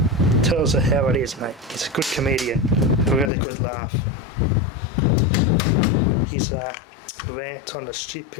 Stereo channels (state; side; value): drops out; right; at 3.3 s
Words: Tells her how it is, mate. He's a good comedian, a really good laugh. His rant on the